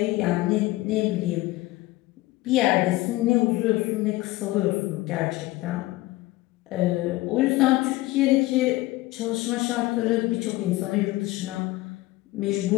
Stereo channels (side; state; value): right; quieter; 19.0 dB